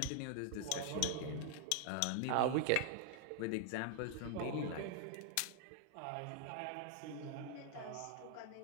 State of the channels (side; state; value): both; different; correlation 0.00